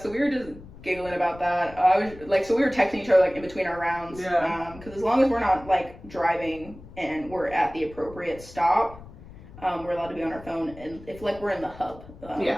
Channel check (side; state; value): left; noise; rumble, 18 dB below the sound